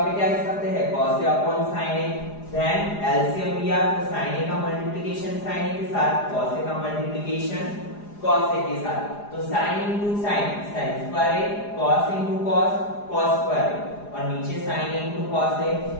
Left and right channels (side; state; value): right; late; 4.9 ms